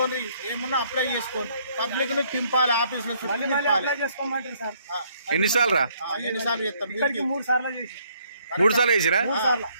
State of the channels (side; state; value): both; inverted; correlation -0.67